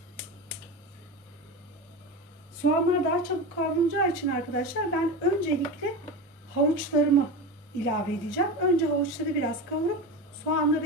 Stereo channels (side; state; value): both; normal; correlation 0.24